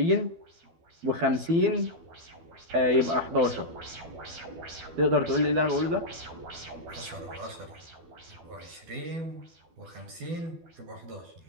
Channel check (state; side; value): late; left; 12 ms